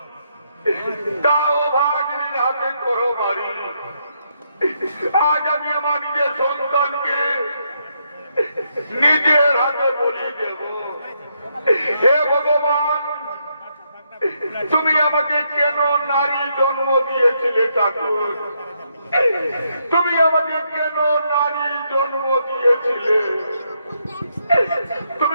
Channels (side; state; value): both; inverted; correlation -0.77